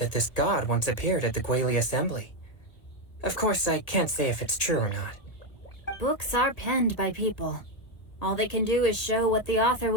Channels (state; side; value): late; right; 1.7 ms